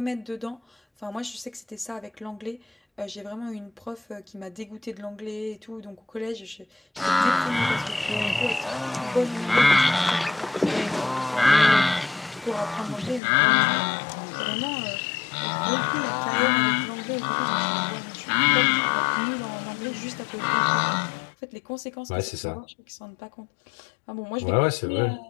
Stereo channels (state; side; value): drops out; right; at 13.2 s